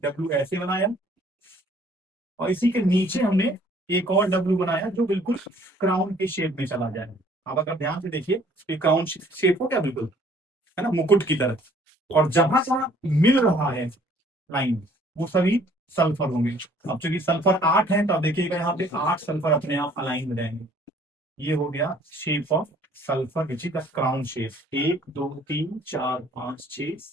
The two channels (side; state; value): both; normal; correlation 0.58